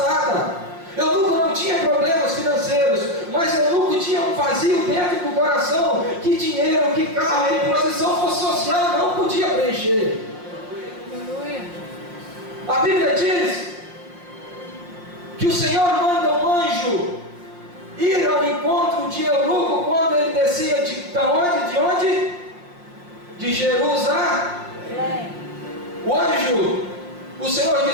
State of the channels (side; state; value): left; late; 5.6 ms